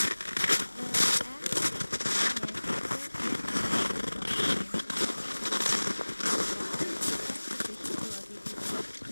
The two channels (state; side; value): inverted; both; correlation -1.00